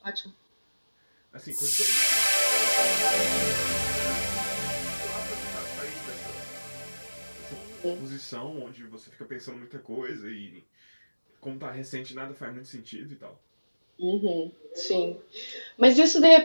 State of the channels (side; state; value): both; inverted; correlation -1.00